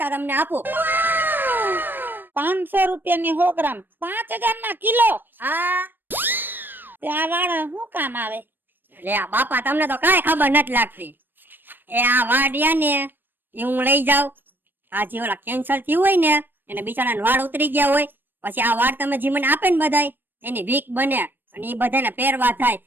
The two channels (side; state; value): left; late; 0.094 ms